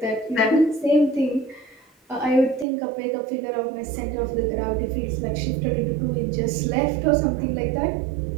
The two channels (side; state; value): left; drops out; at 2.7 s